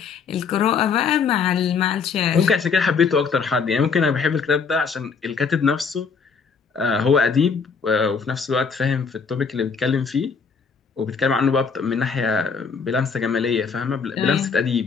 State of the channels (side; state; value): right; quieter; 5.6 dB